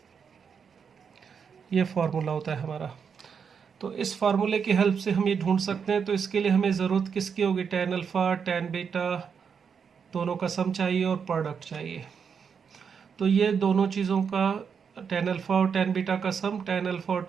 ये फार्मूला होता है हमारा। तो इस फार्मूले की हेल्प से हम ये ढूंढ सकते हैं। तो इसके लिए हमें ज़रूरत किसकी होगी, tan अल्फ़ा tan बीटा दोनों का सम चाहिए और प्रोडक्ट चाहिए। तो ये दोनों चीज़ों का tan अल्फ़ा और tan बीटा का सम, tan अल्फ़ा और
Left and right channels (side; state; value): left; quieter; 6.6 dB